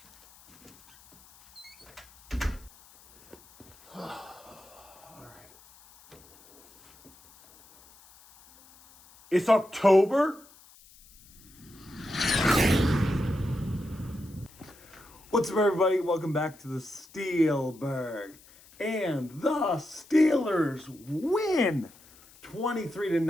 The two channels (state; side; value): noise; left; hiss, 25 dB below the sound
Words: All right. It's October? What's up, everybody? Welcome back to the Steelburgh. And the Steelers win